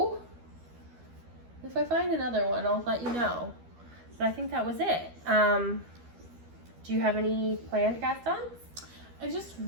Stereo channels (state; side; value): late; left; 12 ms